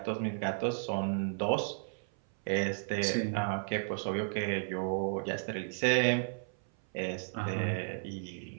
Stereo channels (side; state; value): left; silent; 55 dB below the other